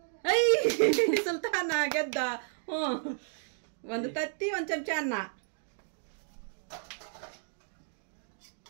ಐ ಸುಲ್ತಾನ ಗೆದ್ದ. ಹ್ಞೂ, 1 ತತ್ತಿ 1 ಚಮಚ ಅನ್ನ.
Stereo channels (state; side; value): silent; left; digital silence